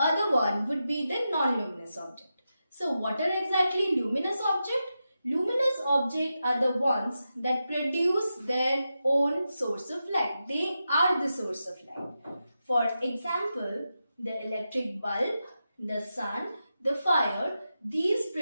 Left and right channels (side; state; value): both; inverted; correlation -0.89